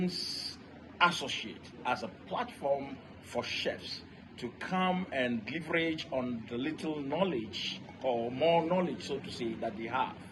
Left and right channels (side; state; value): both; identical; correlation 1.00